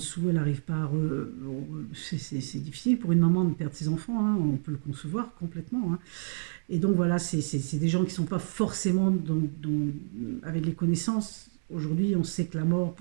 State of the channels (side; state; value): left; silent; digital silence